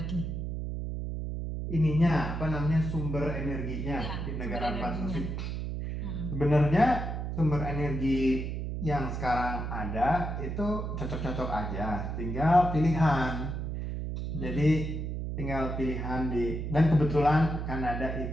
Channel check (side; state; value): right; noise; hum, 4 dB below the sound